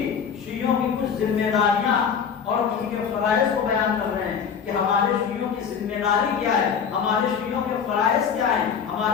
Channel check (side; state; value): right; quieter; 7.0 dB